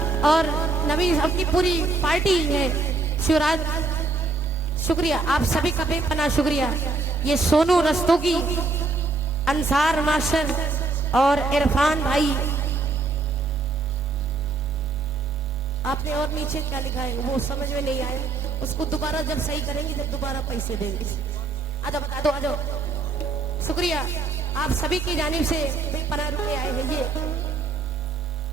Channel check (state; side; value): quieter; left; 3.7 dB